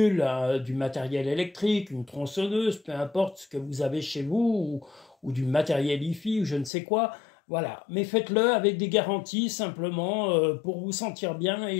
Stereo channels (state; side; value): drops out; right; at 6.7 s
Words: du matériel électrique, une tronçonneuse, peu importe ce que vous avez chez vous, ou du matériel hi-fi, ou je ne sais quoi. Voilà, mais faites-le avec des garanties simplement pour vous sentir bien